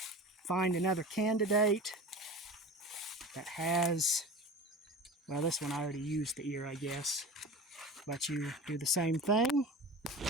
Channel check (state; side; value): normal; both; correlation 0.33